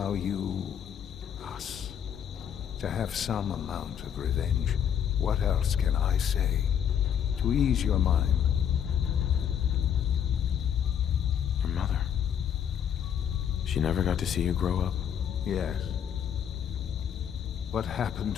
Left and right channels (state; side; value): quieter; right; 8.8 dB